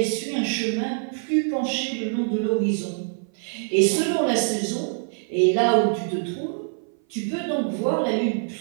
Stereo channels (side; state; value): left; silent; 58 dB below the other